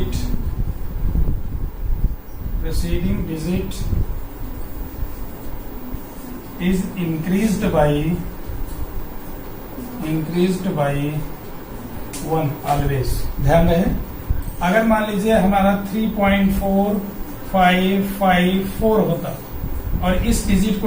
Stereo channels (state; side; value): identical; both; correlation 1.00